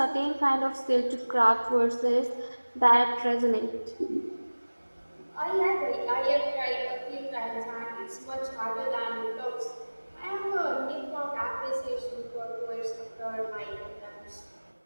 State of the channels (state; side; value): inverted; both; correlation -1.00